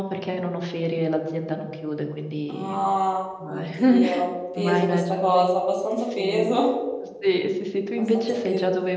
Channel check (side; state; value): both; identical; correlation 1.00